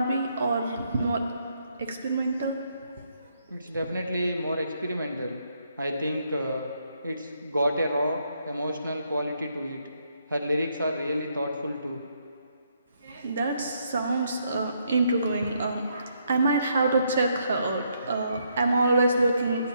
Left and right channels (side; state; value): both; inverted; correlation -0.75